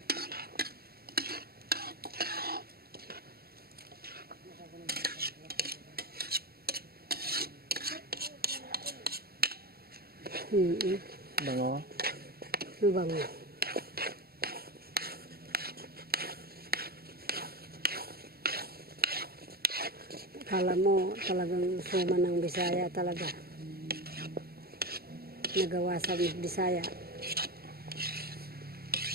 Bango. Ano bango? Kala mo talagang suman ng Bisaya talaga. Nagawa sa Bisaya.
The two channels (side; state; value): left; late; 0.45 ms